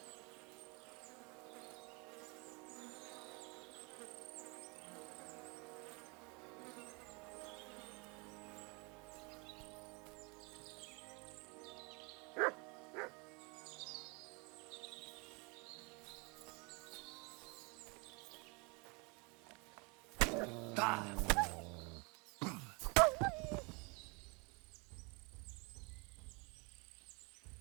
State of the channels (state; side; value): quieter; left; 30.2 dB